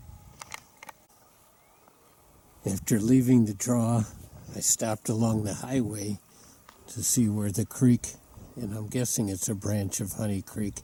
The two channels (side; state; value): both; identical; correlation 1.00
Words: After leaving the draw, I stopped along the highway to see where the creek, and I'm guessing it's a branch of Honey Creek,